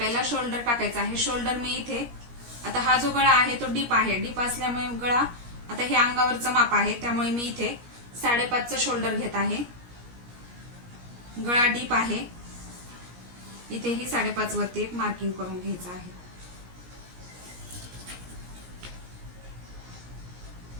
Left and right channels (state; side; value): late; left; 17 ms